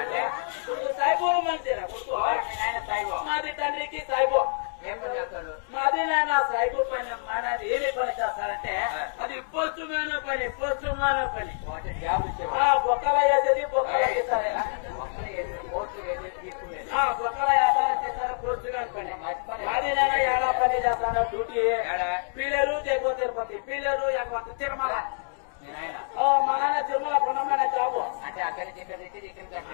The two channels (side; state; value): right; silent; digital silence